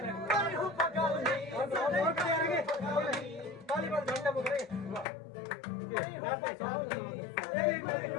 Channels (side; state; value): right; drops out; at 5.1 s